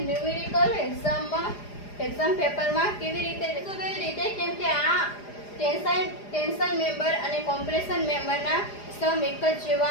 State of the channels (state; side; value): late; right; 4.9 ms